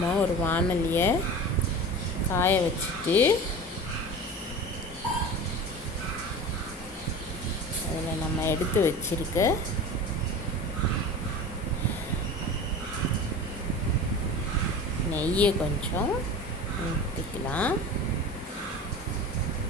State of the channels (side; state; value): both; normal; correlation 0.34